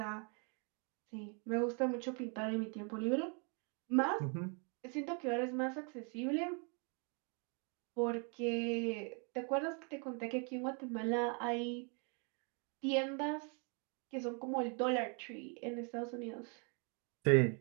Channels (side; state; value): left; quieter; 37.5 dB